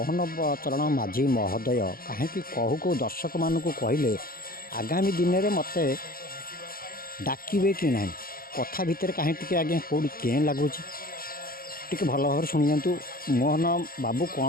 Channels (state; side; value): late; right; 0.42 ms